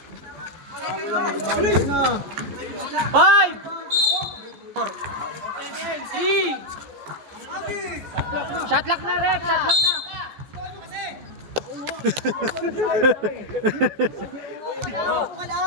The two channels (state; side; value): late; left; 14 ms